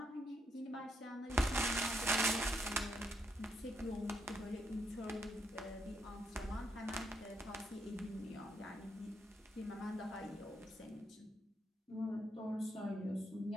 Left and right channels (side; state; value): both; normal; correlation 0.77